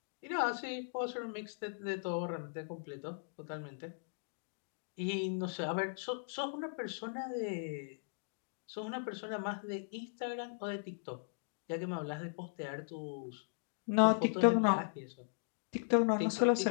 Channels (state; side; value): silent; right; digital silence